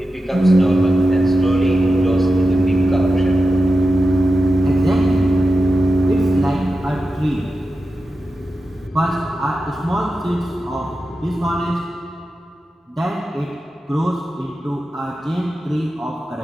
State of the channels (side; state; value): both; normal; correlation 0.92